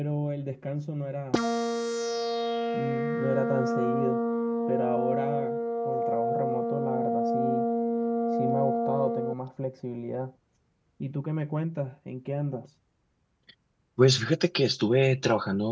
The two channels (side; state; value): both; identical; correlation 1.00